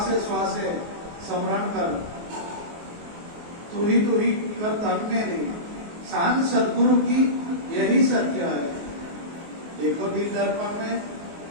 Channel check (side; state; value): left; late; 24 ms